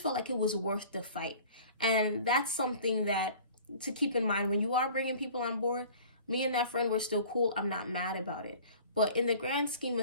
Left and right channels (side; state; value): both; inverted; correlation -0.46